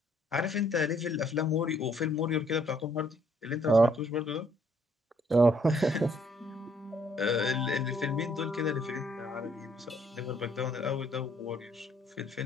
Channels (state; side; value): normal; both; correlation 0.66